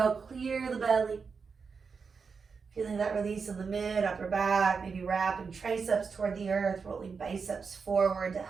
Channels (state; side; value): quieter; left; 5.3 dB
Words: clear the belly. Feeling that release in the mid, upper back, maybe wrapping triceps toward the earth, rolling biceps forward to